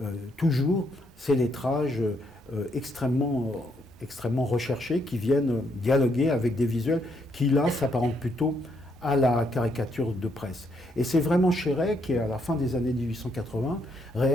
toujours ces lettrages extrêmement recherchés qui viennent dialoguer avec des visuels qui, là, s'apparentent plutôt à la caricature de presse. Et c'est vraiment Chéret qui, à la fin des années 1880,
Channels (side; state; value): both; normal; correlation 0.74